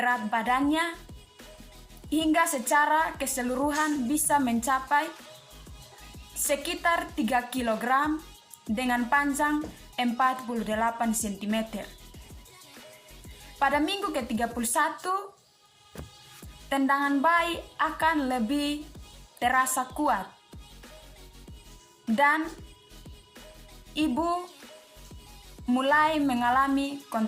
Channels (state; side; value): identical; both; correlation 1.00